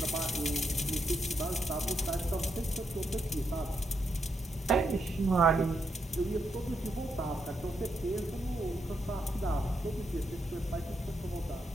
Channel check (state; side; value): normal; both; correlation 0.80